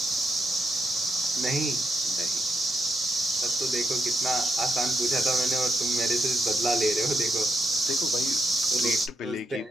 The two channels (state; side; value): normal; both; correlation 0.82